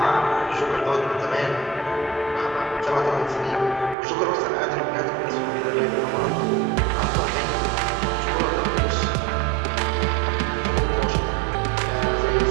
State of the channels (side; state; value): left; drops out; at 4.0 s